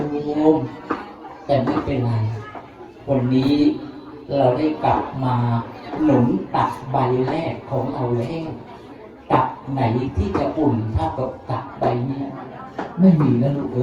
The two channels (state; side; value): identical; both; correlation 1.00